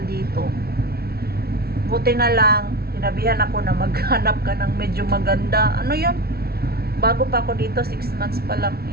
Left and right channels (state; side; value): late; left; 0.45 ms